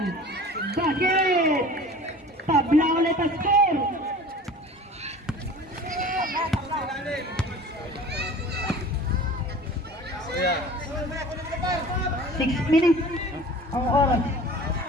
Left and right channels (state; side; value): normal; both; correlation 0.42